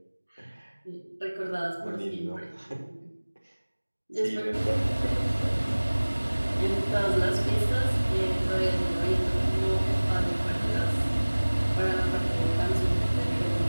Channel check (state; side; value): inverted; both; correlation -1.00